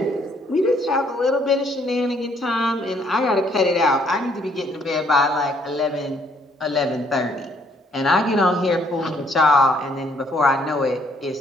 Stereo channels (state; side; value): normal; both; correlation 0.66